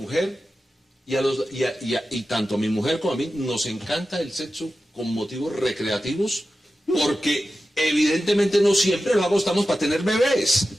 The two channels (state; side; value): normal; both; correlation 0.93